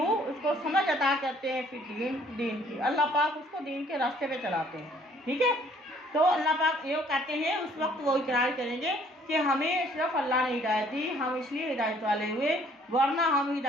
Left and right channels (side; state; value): both; normal; correlation 0.60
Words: उसको समझ अता करते हैं फिद्दीन, दीन की। अल्लाह पाक उसको दीन के रास्ते पे चलाते हैं। ठीक है, तो अल्लाह पाक ये कहते हैं उस वक्त वो इकरार करेंगे कि हमें सिर्फ अल्लाह ने हिदायत दी, हम इसलिए हिदायत वाले हुए, वरना हम